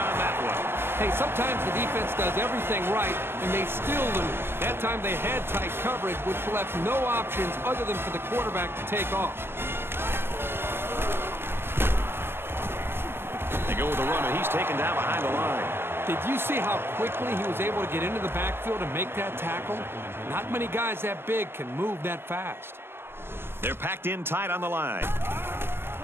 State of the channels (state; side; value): late; left; 0.11 ms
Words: that one. Hey, sometimes the defense does everything right, and they still lose. That time they had tight coverage, which left no options other than for the quarterback to take off. They go with the run, and he's taken down behind the line. Did you see how quickly he was able to get into the backfield and make that tackle? Not many guys that big can move that fast. They're packed in tight on the line.